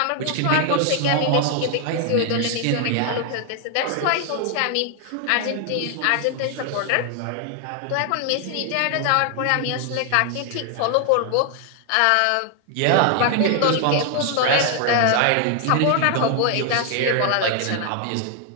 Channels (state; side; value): different; both; correlation 0.00